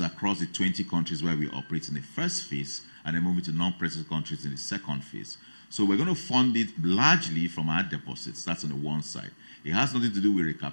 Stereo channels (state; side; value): inverted; both; correlation -1.00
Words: across the 20 countries where we operate in the first phase, and then moving to non-present countries in the second phase. So we're going to fund it largely from our deposits. That's on the one side. It has nothing to do with